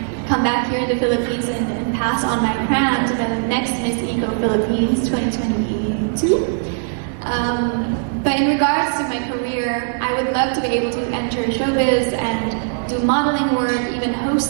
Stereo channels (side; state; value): left; silent; 66 dB below the other